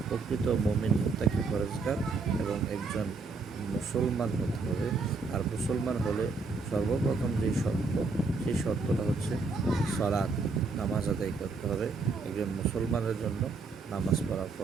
প্রকৃত মুমিন মুত্তাকি পরেজগার এবং একজন মুসলমান হতে হবে। আর মুসলমান হলে সর্বপ্রথম যেই শর্ত, সেই শর্তটা হচ্ছে সালাত, নামাজ আদায় করতে হবে। একজন মুসলমানের জন্য নামাজ পড়া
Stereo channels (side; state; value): left; quieter; 4.2 dB